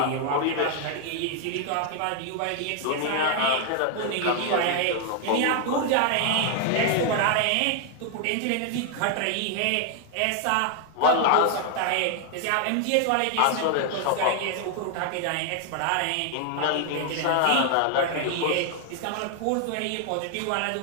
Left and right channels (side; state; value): both; different; correlation 0.00